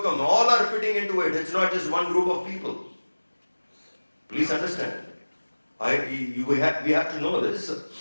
All are fitting into it. It's not just one group of people. Please understand. We have to know this.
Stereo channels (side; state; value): both; inverted; correlation -1.00